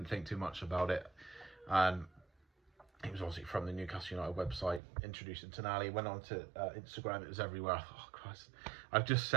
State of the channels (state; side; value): drops out; left; at 4.8 s